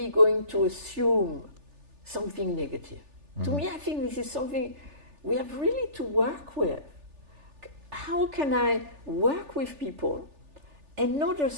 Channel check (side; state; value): left; late; 3.4 ms